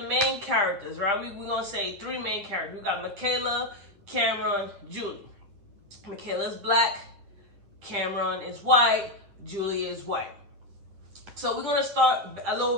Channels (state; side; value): late; left; 10 ms